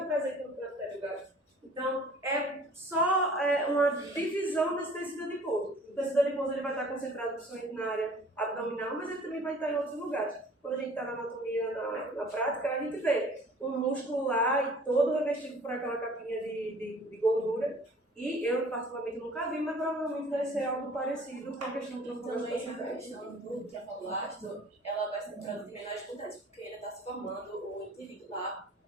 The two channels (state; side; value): normal; both; correlation 0.50